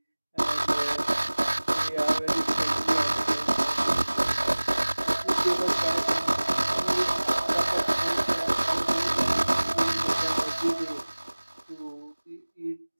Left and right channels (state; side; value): inverted; both; correlation -1.00